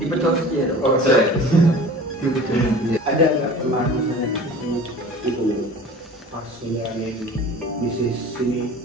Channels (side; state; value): both; normal; correlation 0.41